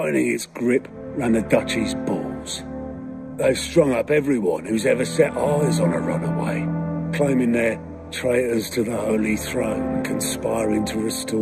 its grip round the Duchy's balls. They've strung up everyone who's ever set eyes on a runaway, claiming they're traitors to the Holy Throne, conspiring to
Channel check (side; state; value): both; identical; correlation 1.00